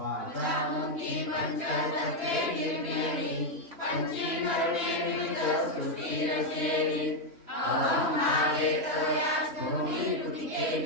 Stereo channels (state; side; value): late; left; 2.9 ms